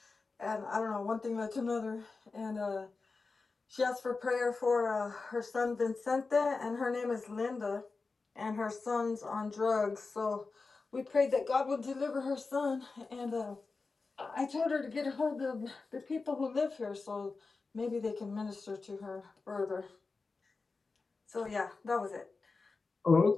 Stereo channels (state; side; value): quieter; right; 4.1 dB